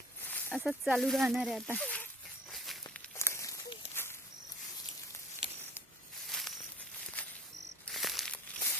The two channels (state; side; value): normal; both; correlation 0.50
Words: असंच चालू राहणार आहे आता.